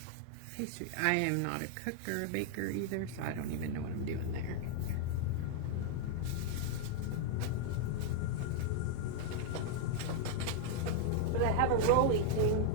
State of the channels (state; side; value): different; both; correlation 0.00